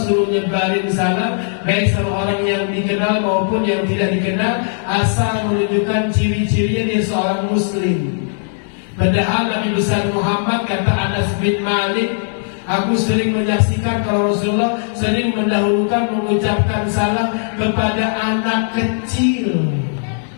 nyebarin salam baik sama orang yang dikenal maupun yang tidak dikenal, asal menunjukkan ciri-cirinya dia seorang muslim. Padahal Nabi besar Muhammad, kata Anas bin Malik, aku sering menyaksikan kalau Rasulullah sering mendahulukan mengucapkan salam kepada anak kecil.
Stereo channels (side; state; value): right; silent; digital silence